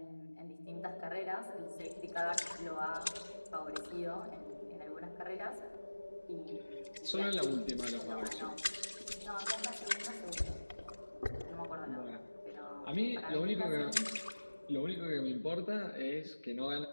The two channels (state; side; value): inverted; both; correlation -1.00